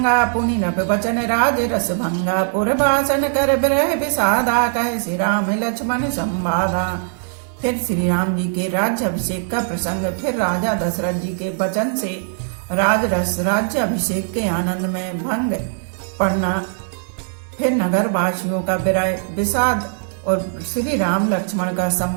पुनि नभ वचन राज रस भंगा। पुरभाषण कर विरह विषादा, कहे श्री राम लक्ष्मण संवादा। फिर श्री राम जी के राज्य अभिषेक का प्रसंग, फिर राजा दशरथ जी के वचन से राजरस राज्य अभिषेक के आनंद में भंग पड़ना, फिर नगर वासियों का विरह विषाद और श्री राम लक्ष्मण का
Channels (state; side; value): silent; left; digital silence